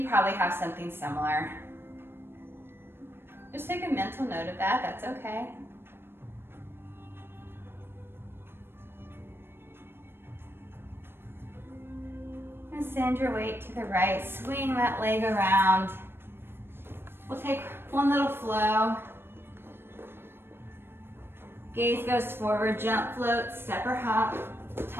probably have something similar. Just take a mental note of that, that's okay. And send your weight to the right, swing that leg around. We'll take one little flow. Gaze goes forward, jump, float, step or hop,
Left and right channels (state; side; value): late; left; 0.11 ms